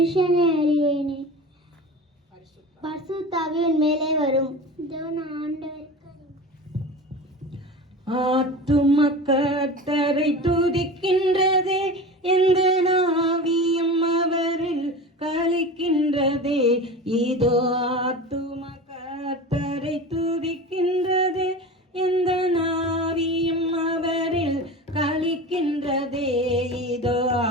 அறியேனே, பரிசுத்தாவியின் மேலே வரும். ஆத்தும கர்த்தரை துதிக்கின்றதே, எந்த நாவியும் அவரில் கலிக்கின்றதே. இதோ ஆத்தும கர்த்தரை துதிக்கின்றதே, எந்த நாவியும் அவரில் கலிக்கின்றதே. இதோ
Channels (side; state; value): both; normal; correlation 0.32